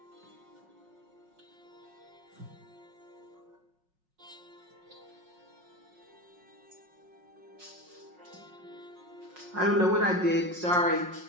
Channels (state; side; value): late; left; 5.5 ms